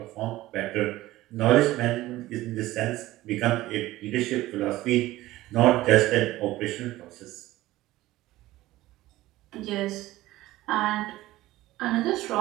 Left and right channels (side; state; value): left; quieter; 16.8 dB